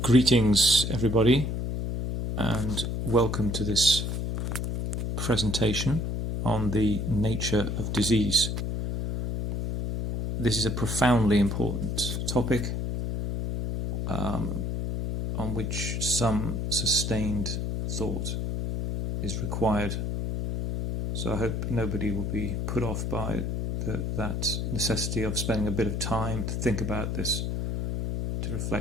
Greetings, everybody, and welcome to this presentation on the nature of disease. This is a profoundly important topic on which some sustained thought is required. So I hope nobody will be put off by that necessity of spending a bit of time to think about this, to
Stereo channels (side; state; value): left; noise; hum, 2 dB below the sound